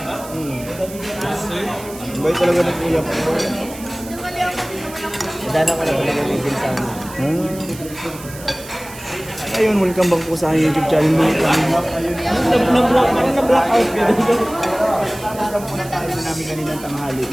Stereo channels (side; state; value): right; noise; hiss, 16 dB below the sound